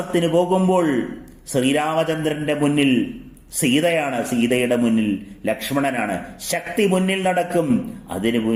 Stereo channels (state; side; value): identical; both; correlation 1.00